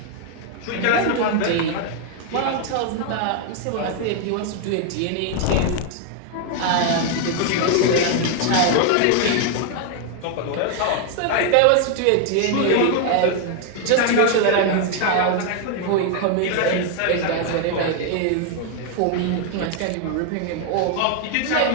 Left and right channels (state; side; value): different; both; correlation 0.00